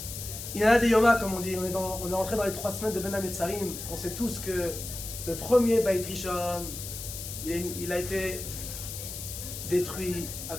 Il y en a des Yoma, comme on dit, on est rentré dans les 3 semaines de Ben Hametzarim. On sait tous que le premier Beit Rishon, il a été détruit à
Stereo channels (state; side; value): noise; left; hiss, 8 dB below the sound